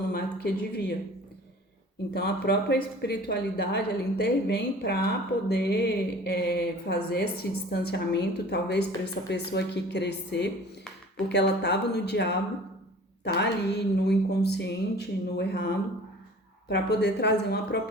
mais do que devia. Então a própria espiritualidade ela intervém para poder fazer esse distanciamento, talvez para essa pessoa aqui crescer, porque ela estava no diabo, tá ali no inconsciente, no errado, para poder trazer uma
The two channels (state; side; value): normal; both; correlation 0.45